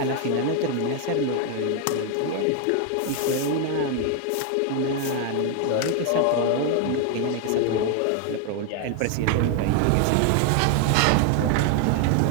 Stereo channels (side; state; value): both; different; correlation 0.00